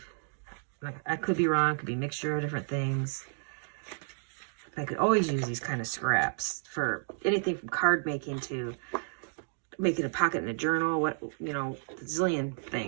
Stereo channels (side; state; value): left; silent; digital silence